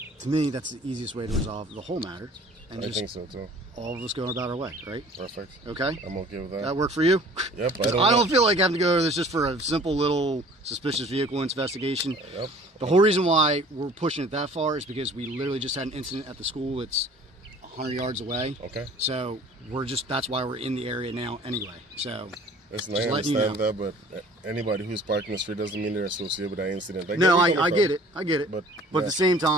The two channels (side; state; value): both; normal; correlation 0.50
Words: to me, that's the easiest way to resolve the whole matter, and I just think so too. all of us going about our way, right? Perfect. Okay. I'm okay with that. That work for you? Yep. 'Cause I don't feel like having to go to this just for a simple little suspicious vehicle investigation. Yep. The whole reason why we're pushing it that far is because we literally just had an incident at the school that's 100 yards away. Okay. So that's why we're in the area now anyway. So Listen, just I letting you understand that, but anybody who's parking the street doesn't mean they're associated with that incident. no, where you're I coming get it. I get it. But, But yeah. at the same